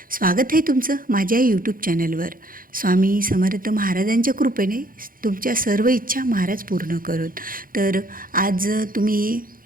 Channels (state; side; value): late; left; 0.41 ms